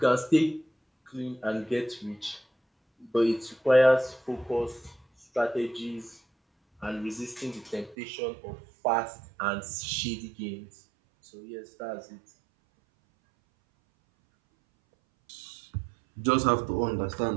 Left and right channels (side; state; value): left; drops out; at 8.0 s